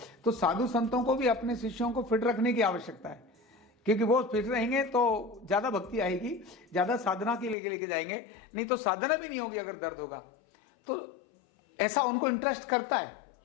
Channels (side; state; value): right; drops out; at 7.6 s